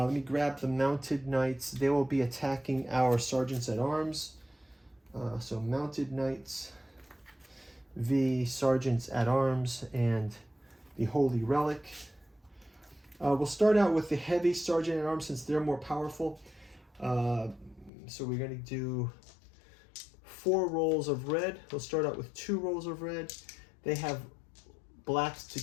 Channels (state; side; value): drops out; right; at 17.9 s